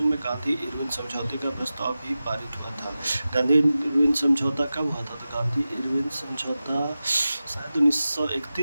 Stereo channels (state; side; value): inverted; both; correlation -0.94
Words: में गांधी इरविन समझौते का प्रस्ताव भी पारित हुआ था। गांधी इरविन समझौता कब हुआ था? तो गांधी इरविन समझौता शायद